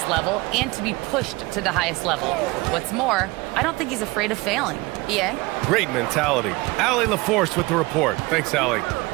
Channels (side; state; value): left; quieter; 22.7 dB